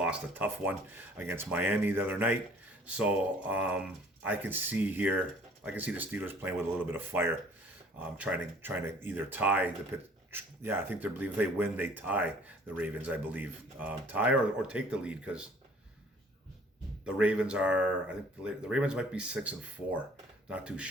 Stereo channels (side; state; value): both; normal; correlation 0.55